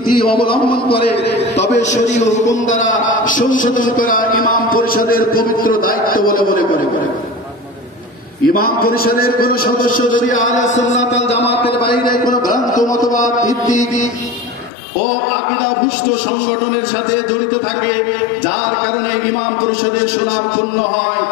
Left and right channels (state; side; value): drops out; right; at 14.7 s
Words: অবলম্বন করে, তবে শরীয় হুকুম দ্বারা সংশোধন করা ইমাম পরিষদের পবিত্র দায়িত্ব বলে মনে করে। ইমাম পরিষদের কোন সদস্য যদি আহলে সুন্নাত ওয়াল জামাতের বাইরে কোন ভ্রান্ত মতবাদ ভিত্তিক ও আকীদাভুষ্ট সংগঠনের সাথে জড়িত থাকে, যার কারণে ইমাম পরিষদের সুনাম ক্ষুণ্ণ হয়,